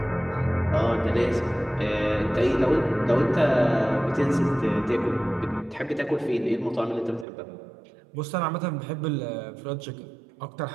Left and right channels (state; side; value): drops out; left; at 7.2 s